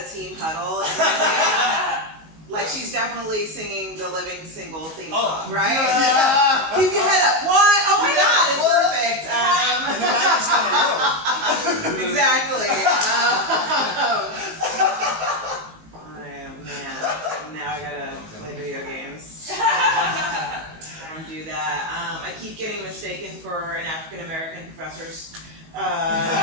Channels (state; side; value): late; left; 19 ms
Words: team huddle, like she's definitely singing the Living Single theme song, right? Yeah. Keep your head up. What? Oh my God, it's perfect. Exactly. Man, now I gotta play video games. I don't do that. I keep getting mistaken for an African American professor's.